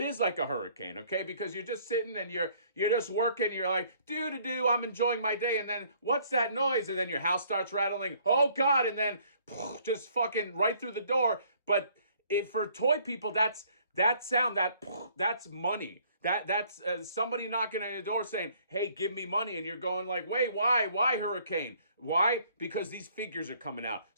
is like a hurricane, okay? Because you're just sitting and you're just working, you're like, do, I'm enjoying my day, and then what's that noise? And then your house starts rattling, oh God, and then just fucking right through the door. But if for toy people, that sound, that's money. That's somebody knocking on your door saying, hey, give me money. And you're going like, wait, why hurricane? Why? Because these figures are coming out.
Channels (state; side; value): inverted; both; correlation -0.61